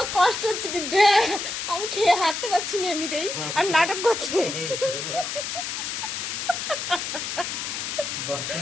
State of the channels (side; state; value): left; noise; hiss, 4 dB below the sound